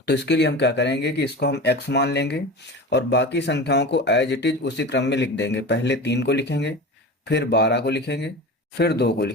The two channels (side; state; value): both; normal; correlation 0.31